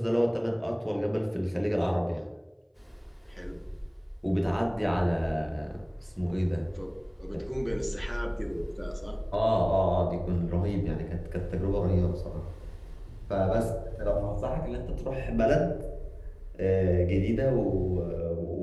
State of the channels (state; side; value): identical; both; correlation 1.00